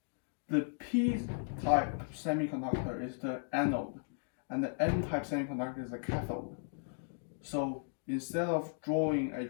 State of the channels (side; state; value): right; silent; digital silence